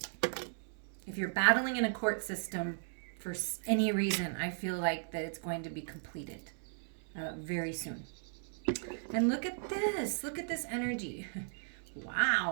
If you're battling in a court system for any reason, I feel like that it's going to be completed very soon. And look at this. Look at this energy.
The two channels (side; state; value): left; silent; 54 dB below the other